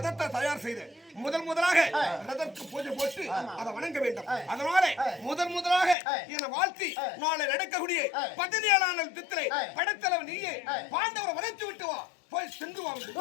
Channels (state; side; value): drops out; right; at 6.0 s